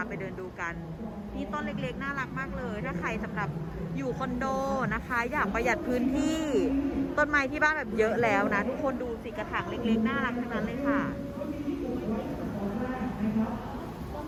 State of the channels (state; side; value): identical; both; correlation 1.00